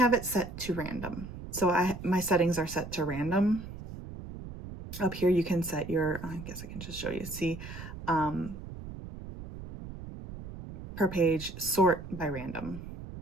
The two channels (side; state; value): right; noise; rumble, 11 dB below the sound